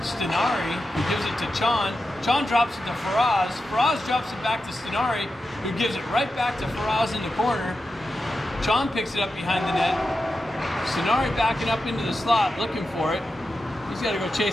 Stinari, who gives it to Chon. Chon drops it to Faraz. Faraz drops it back to Stinari, who gives it right back to Faraz in the corner. Chon picks it up behind the net. Stinari backing up into the slot, looking for it. He's got to go chase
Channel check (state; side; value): normal; both; correlation 0.90